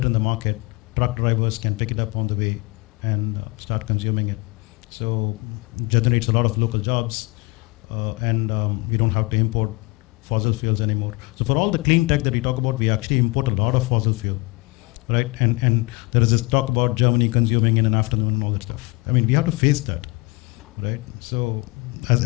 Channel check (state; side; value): quieter; right; 26.2 dB